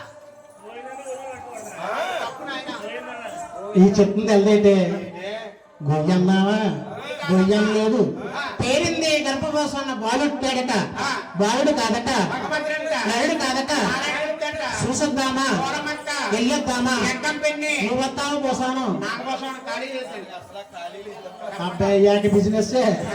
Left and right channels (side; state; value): both; identical; correlation 1.00